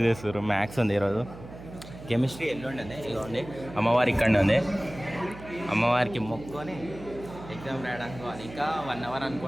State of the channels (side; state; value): right; noise; hum, 15 dB below the sound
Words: చేస్తారు. మ్యాథ్స్ ఉంది ఈరోజు. కెమిస్ట్రీ ఎల్లుండి ఇదిగోండి. అమ్మవారి ఇక్కడనే ఉంది. అమ్మవారికి మొక్కుకొని ఎగ్జామ్ రాయడానికి పోవాలి. ఇంకా 1 hour